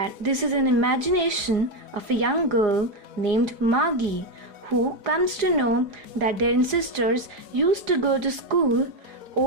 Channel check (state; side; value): late; left; 4.9 ms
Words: this is an imagination of a young girl named Margie, who comes to know that their ancestors used to go to school.